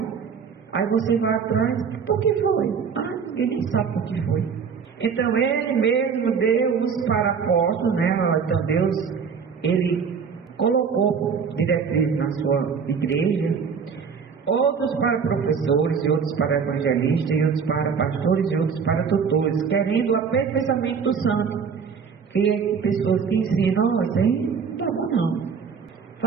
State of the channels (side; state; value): left; quieter; 6.2 dB